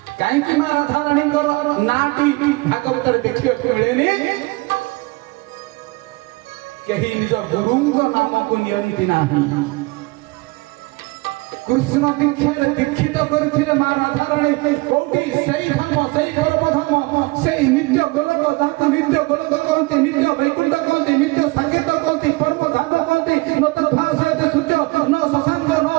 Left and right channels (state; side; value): quieter; left; 24.5 dB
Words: କାହିଁକି ମା ରାଧାରାଣୀଙ୍କର ନାଁଟି ଭାଗବତରେ ଦେଖିବାକୁ ମିଳେନି? କେହି ନିଜ ଗୁରୁଙ୍କ ନାମକୁ ନିଅନ୍ତି ନାହିଁ। କୃଷ୍ଣ ଦୀକ୍ଷାରେ ଦୀକ୍ଷିତ କରିଥିଲେ ମା ରାଧାରାଣୀ। କୋଉଠି? ସେଇ ଧାମ, ସେଇ ପରମ ଧାମ, ସେଇ ନିତ୍ୟ ଗୋଲକ, ଯାହାକୁ ନିତ୍ୟ ଗୋଲକ କହନ୍ତି, ନିତ୍ୟ ବୈକୁଣ୍ଠ କହନ୍ତି, ନିତ୍ୟ ସାକେତ କହନ୍ତି, ପରମ ଧାମ କହନ୍ତି। ନ ତଦ୍ଭାସ ସହିତ ସୂର୍ଯ୍ୟ ନ ଶଶାଙ୍କ ନ